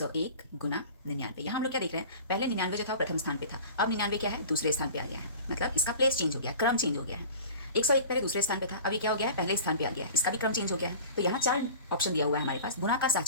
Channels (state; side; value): inverted; both; correlation -0.38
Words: गुना 99। यहाँ हम लोग क्या देख रहे हैं, पहले 99 जो था वो प्रथम स्थान पे था, अब 99 क्या है, दूसरे स्थान पे आ गया है। मतलब इसका प्लेस चेंज हो गया, क्रम चेंज हो गया है। 101 पहले दूसरे स्थान पे था, अब ये क्या हो गया है, पहले स्थान पे आ गया है, इसका भी क्रम चेंज हो गया है। तो यहाँ 4 ऑप्शन दिया हुआ है हमारे पास। गुना का